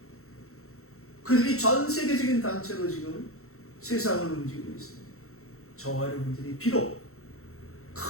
그들이 전 세계적인 단체로 지금 세상을 움직이고 있습니다. 저와 여러분들이 비록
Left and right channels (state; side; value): late; right; 0.63 ms